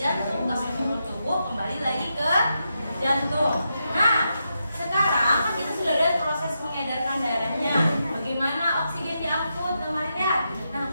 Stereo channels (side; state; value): both; inverted; correlation -0.85